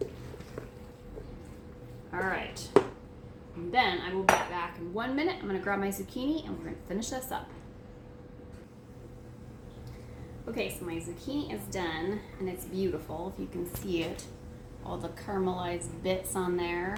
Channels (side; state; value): both; identical; correlation 1.00